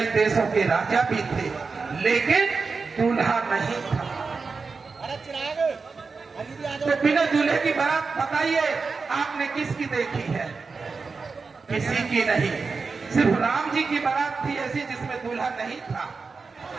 देशों के राजा भी थे, लेकिन दूल्हा नहीं था। तो बिना दूल्हे की बारात बताइए आपने किसकी देखी है? किसी की नहीं। सिर्फ राम जी की बारात थी ऐसी जिसमें दूल्हा नहीं था।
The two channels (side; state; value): left; quieter; 4.6 dB